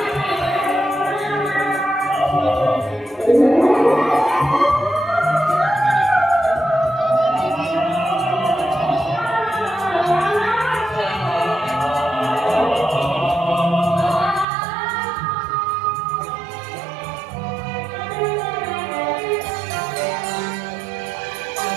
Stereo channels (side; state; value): left; drops out; at 14.5 s